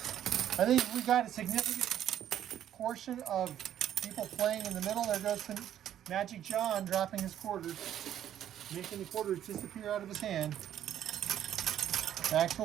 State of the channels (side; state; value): left; quieter; 10.8 dB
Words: I think we got a significant portion of people playing in the middle. There goes Magic John dropping his quarters, making the quarters disappear out of his hand. Back to the